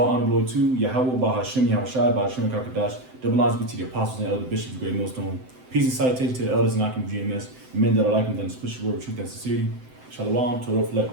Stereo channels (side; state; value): left; late; 7.8 ms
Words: honor, glory to Yahweh Bahashem Yahushai, Bahashem Kakadash. Double honors be to the apostles and elder bishops, great millstone. Peace and salutation to the elders and Akim GMS. And men that are like them, that push the word of truth and sincerity. Shalom, Torah, Flek,